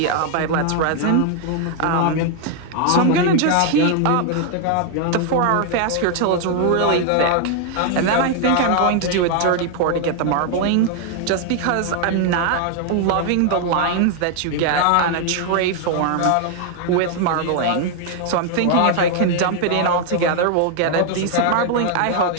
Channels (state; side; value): different; both; correlation 0.00